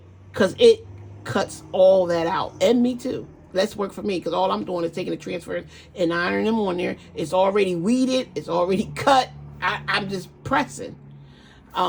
Because it cuts all that out. And me too. That's work for me, because all I'm doing is taking the transfers and ironing them on there. It's already weeded. It's already cut. I'm just pressing.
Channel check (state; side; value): identical; both; correlation 1.00